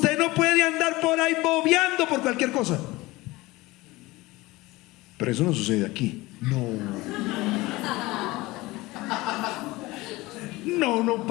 no puede andar por ahí bobeando por cualquier cosa. Pero eso no sucede aquí. No,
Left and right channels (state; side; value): quieter; right; 20.5 dB